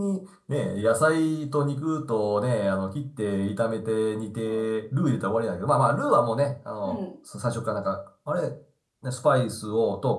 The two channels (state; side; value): identical; both; correlation 1.00